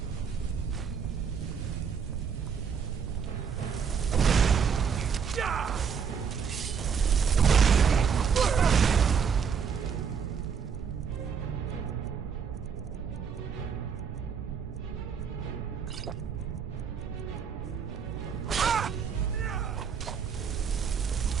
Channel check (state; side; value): quieter; left; 6.7 dB